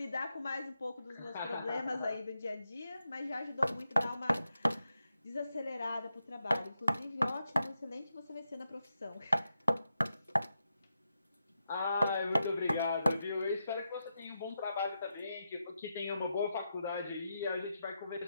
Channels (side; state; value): both; inverted; correlation -0.86